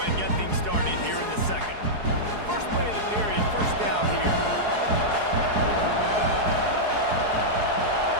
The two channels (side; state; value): left; late; 4.7 ms